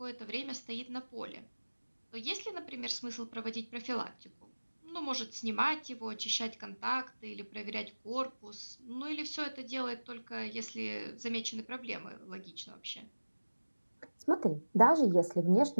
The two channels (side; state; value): both; inverted; correlation -1.00